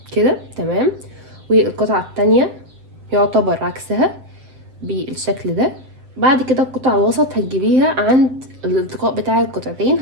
كده، تمام، والقطعه التانية يعتبر عكسها بالشكل ده. بعد كده القطعه الوسط هتجيبيها عند الالتقاء بتاع القطعتين،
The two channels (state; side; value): late; left; 7.9 ms